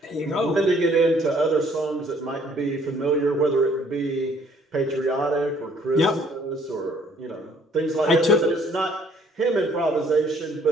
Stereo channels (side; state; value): both; normal; correlation 0.61